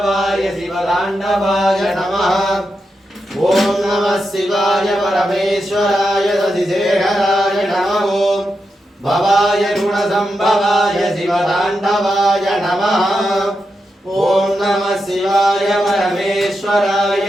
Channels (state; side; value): normal; both; correlation 0.87